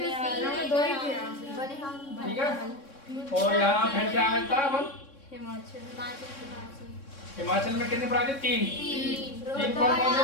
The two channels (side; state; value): right; late; 3.6 ms